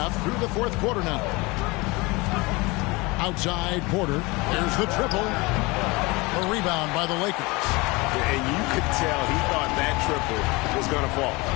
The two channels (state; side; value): quieter; right; 24.5 dB